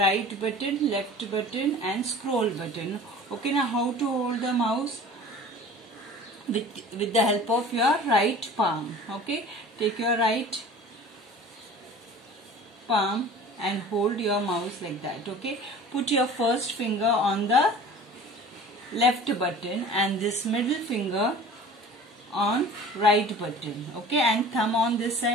button, left button and scroll button. Okay, now how to hold the mouse? With the help of your right palm, okay? Take your right palm and hold your mouse like that, okay? Put your first finger on the left button and this middle finger on right button, okay? And thumb on this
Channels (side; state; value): both; normal; correlation 0.42